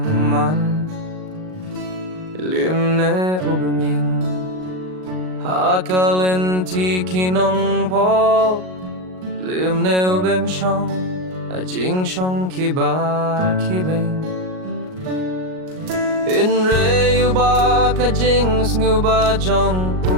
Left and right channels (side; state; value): left; late; 38 ms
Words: limne ubeming hakalenti kinong po limne ubem shong ajing shong kibar kibeng inre uba kajing snuba jong